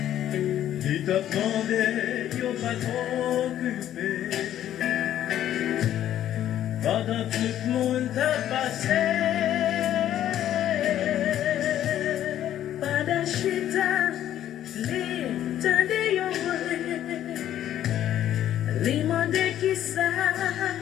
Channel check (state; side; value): quieter; right; 11.6 dB